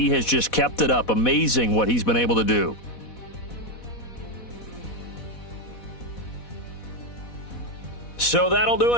has just kept it up. Amazing what he's been able to do. So that'll do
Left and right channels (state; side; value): late; right; 4.1 ms